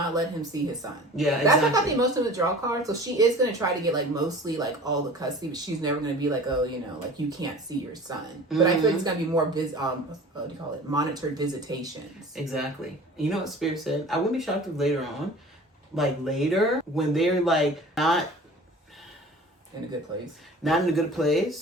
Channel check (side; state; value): both; normal; correlation 0.42